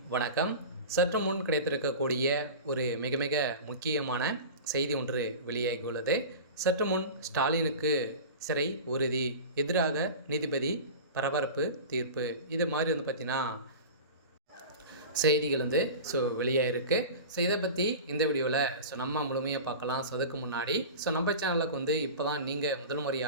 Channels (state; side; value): inverted; both; correlation -0.32